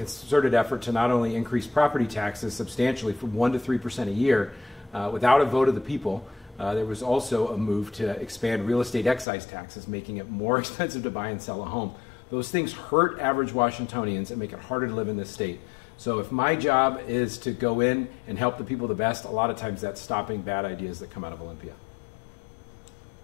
effort to not only increase property taxes substantially from 1% to 3% a year without a vote of the people. There was also a move to expand real estate excise taxes, making it more expensive to buy and sell a home. Those things hurt average Washingtonians and make it harder to live in this state. So if my job is to go in and help the people the best, a lot of times that's stopping bad ideas that come out of Olympia.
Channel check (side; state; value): right; drops out; at 9.2 s